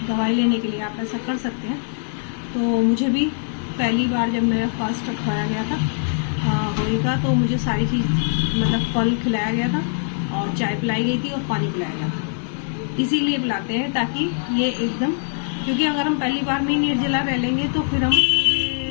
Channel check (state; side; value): silent; right; 64 dB below the other